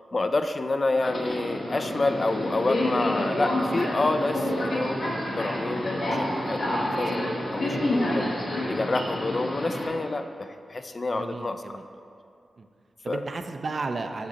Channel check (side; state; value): both; normal; correlation 0.93